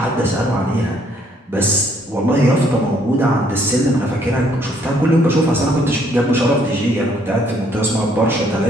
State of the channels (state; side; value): normal; both; correlation 0.66